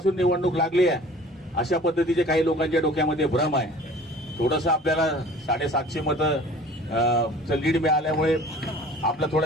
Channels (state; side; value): normal; both; correlation 0.46